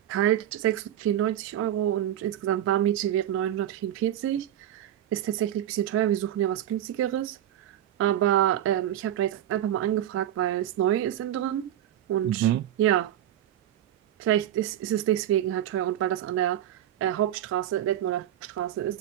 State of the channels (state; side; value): quieter; left; 11.8 dB